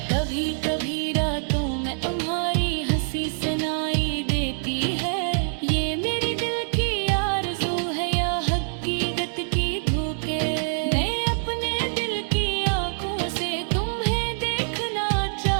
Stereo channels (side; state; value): left; silent; digital silence